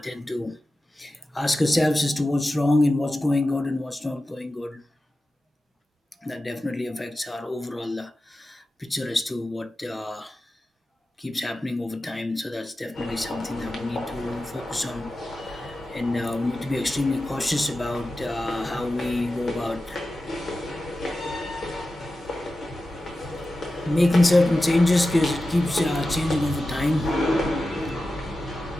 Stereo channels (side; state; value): both; normal; correlation 0.93